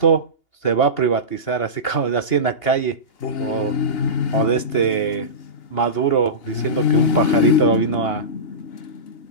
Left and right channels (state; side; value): late; right; 2.8 ms